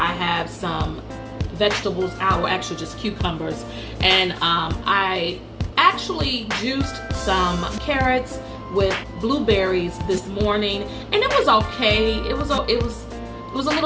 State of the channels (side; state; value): both; identical; correlation 1.00